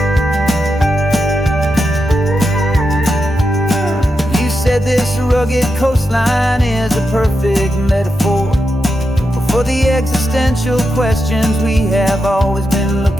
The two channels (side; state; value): both; normal; correlation 0.87